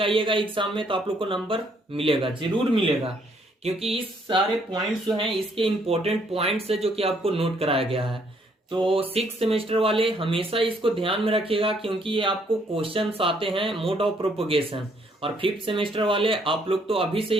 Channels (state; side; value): normal; both; correlation 0.68